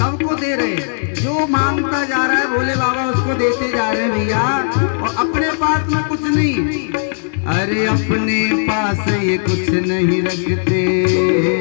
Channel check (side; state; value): right; silent; digital silence